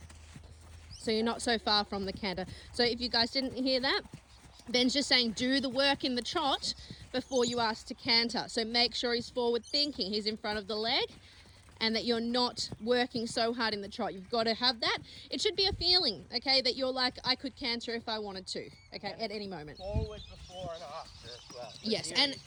So you're not so far from the canter. So if you guys didn't hear that, Ben's just saying do the work in the trot before you ask to canter. So make sure he's forward thinking, he's in front of the leg, and that you're not working so hard in the trot. You've got to have that. It should be a feeling, okay, that you're like, I could canter if I wanted to, okay, at any moment. Forward before and after as well. Yes, and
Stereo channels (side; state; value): both; identical; correlation 1.00